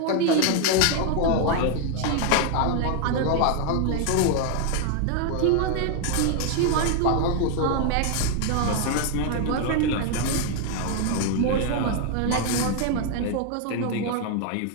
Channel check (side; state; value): both; different; correlation 0.00